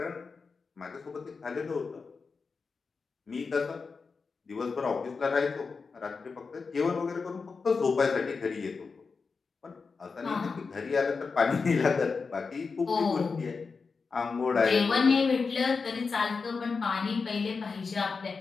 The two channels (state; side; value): quieter; right; 4.8 dB